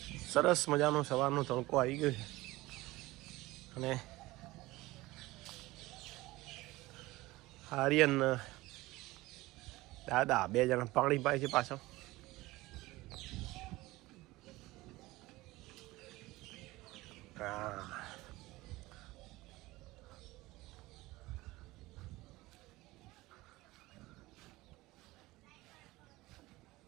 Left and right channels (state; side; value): quieter; left; 19.5 dB